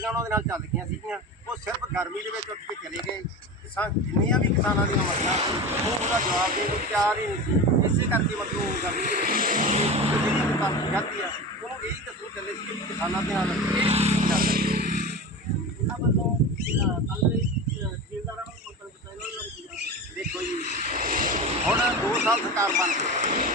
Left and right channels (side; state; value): both; normal; correlation 0.28